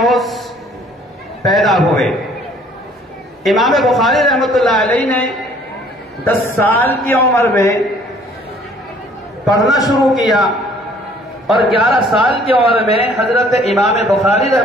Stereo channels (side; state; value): both; normal; correlation 0.57